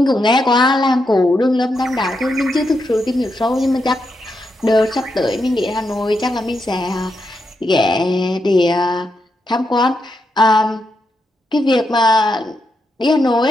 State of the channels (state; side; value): normal; both; correlation 0.84